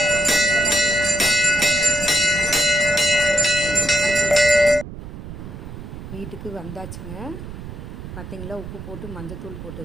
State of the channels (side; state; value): right; noise; rumble, 11 dB below the sound